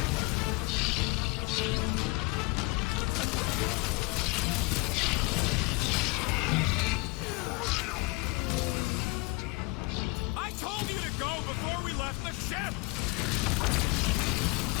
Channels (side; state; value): right; quieter; 25.9 dB